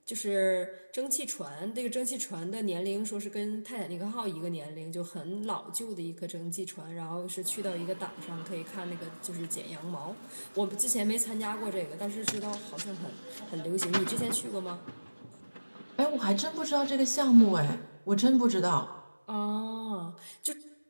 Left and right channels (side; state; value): both; inverted; correlation -1.00